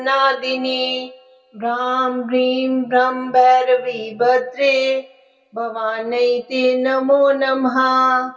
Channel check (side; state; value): both; identical; correlation 1.00